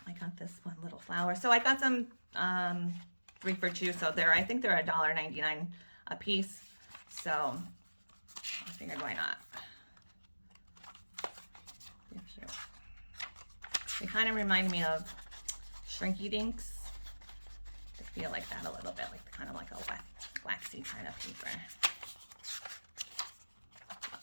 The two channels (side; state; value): both; inverted; correlation -1.00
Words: I got this one little flower. So I got them 3 for 2, so I think they're $1.99 a piece. So I figured, why not? They're cute. They kind of remind me of Shrinky Dinks. They feel like that a little bit, like kind of like a waxy kind of paper.